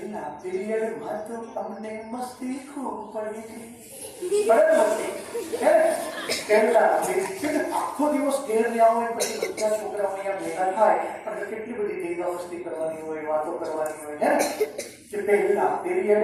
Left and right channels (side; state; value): both; identical; correlation 1.00